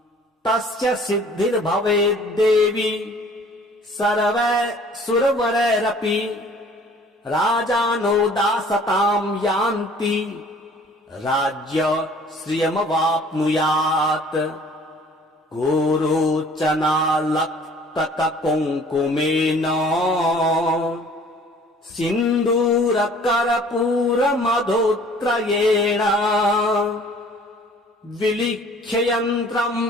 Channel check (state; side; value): normal; both; correlation 0.53